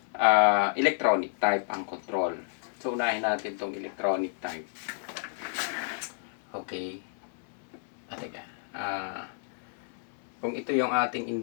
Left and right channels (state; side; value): silent; right; 58 dB below the other